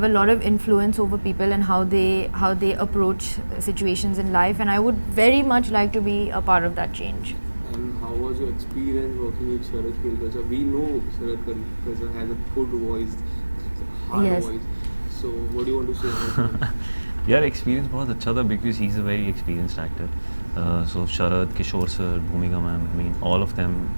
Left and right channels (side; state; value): both; inverted; correlation -1.00